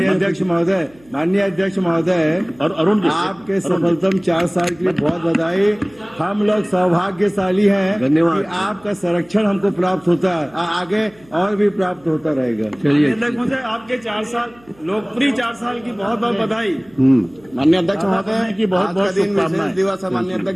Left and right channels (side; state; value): right; noise; hum, 28 dB below the sound